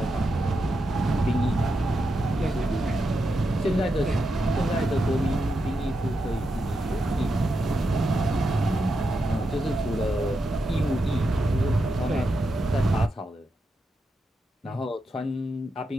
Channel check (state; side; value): normal; both; correlation 0.86